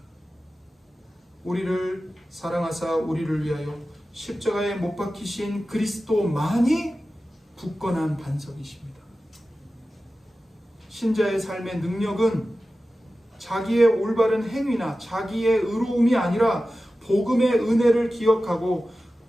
우리를 사랑하사 우리를 위하여 십자가에 못 박히신 그리스도만이 굳건한 반석이십니다. 신자의 삶의 능력은 자기의 올바른 행위나 자기의 의로움이 아니라 복음의 은혜를 기억하고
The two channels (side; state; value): both; normal; correlation 0.94